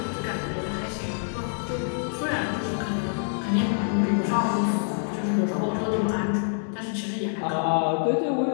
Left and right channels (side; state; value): right; silent; digital silence